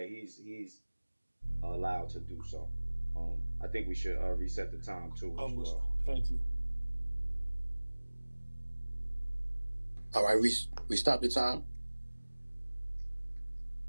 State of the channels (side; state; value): both; inverted; correlation -1.00